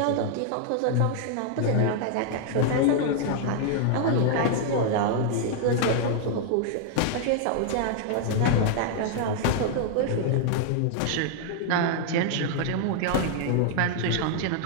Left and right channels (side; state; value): both; different; correlation -0.01